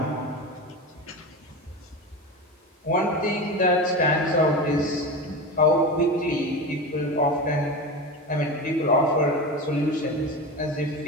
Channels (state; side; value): normal; both; correlation 0.25